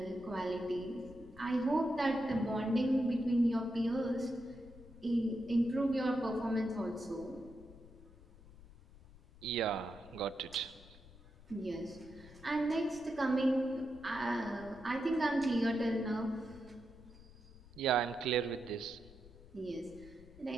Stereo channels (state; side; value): noise; left; rumble, 20 dB below the sound